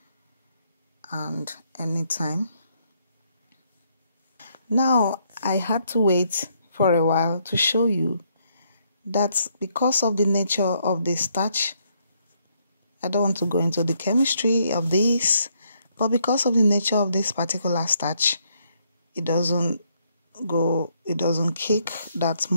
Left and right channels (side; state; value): both; inverted; correlation -0.72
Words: and any time. Now, I had to wait for a while to show you that because of the nature of the starch, I don't want to go into the chemistry of this, but because of the nature of this particular starch, it doesn't cake that